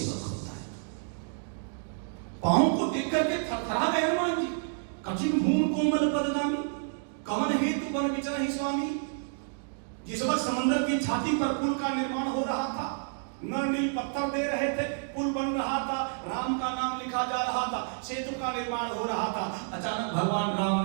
होता है। पांव को देख करके थरथरा गए हनुमान जी। कठिन भूमि कोमल पदगामी, कवन हेतु वन विचरहि स्वामी। जिस वक्त समुद्र की छाती पर पुल का निर्माण हो रहा था, नर नील पत्थर दे रहे थे, पुल बन रहा था, राम का नाम लिखा जा रहा था, सेतु का निर्माण हो रहा था। अचानक भगवान राम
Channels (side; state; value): left; silent; digital silence